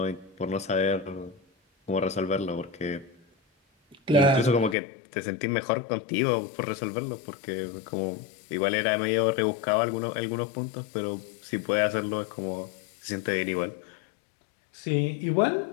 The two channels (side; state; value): right; drops out; at 4.8 s